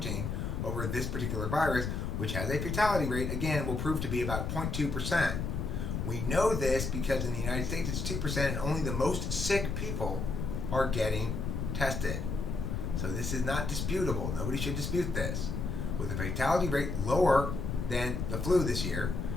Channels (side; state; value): left; noise; rumble, 2 dB below the sound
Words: over this particular virus, which has a fatality rate, again, will prove to be about 0.2%. We know this because in the United States it's 2% and only the most sick people are getting tested. So this is not disputable. Nobody should dispute this. With the fatality rate lower than the flu this year,